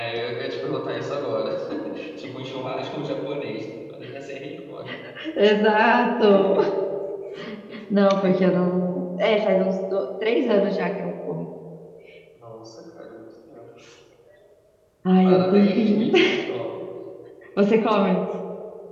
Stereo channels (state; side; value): identical; both; correlation 1.00